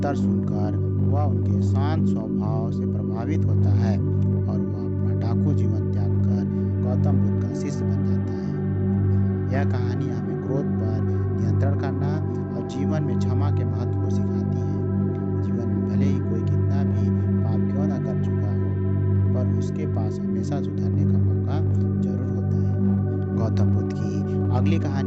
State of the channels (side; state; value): both; identical; correlation 1.00